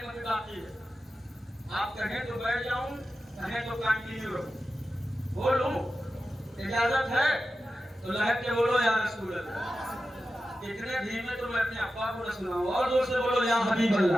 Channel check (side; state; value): both; normal; correlation 0.92